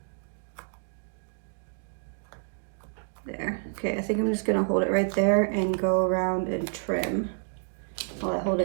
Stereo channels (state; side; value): silent; left; digital silence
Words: There. Okay, I think I'm just gonna hold it right there and go around and trim while I hold